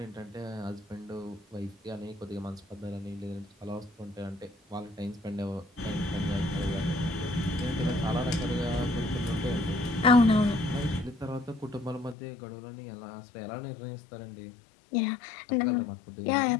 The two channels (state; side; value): drops out; right; at 12.2 s